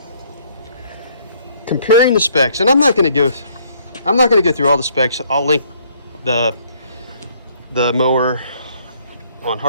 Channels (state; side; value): inverted; both; correlation -0.64